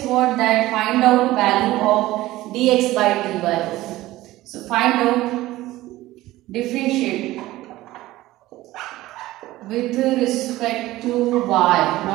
what, that find out value of dx by dy. So find out, differentiate with respect to y,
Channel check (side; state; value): left; quieter; 17.0 dB